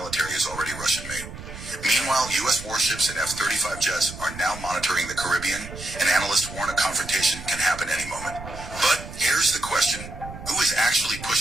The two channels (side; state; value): right; noise; rumble, 12 dB below the sound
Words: is already Russian-made. Meanwhile, U.S. warships and F-35 jets are now monitoring the Caribbean, and analysts warn a confrontation can happen any moment. But here's the question. Who is actually